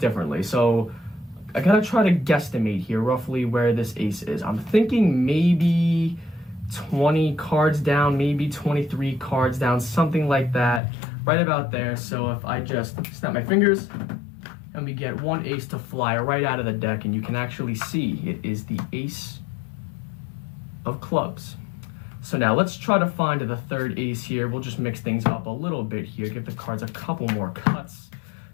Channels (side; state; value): right; drops out; at 10.8 s